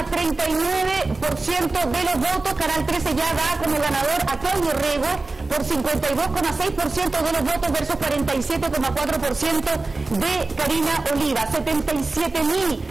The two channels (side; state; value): left; quieter; 3.4 dB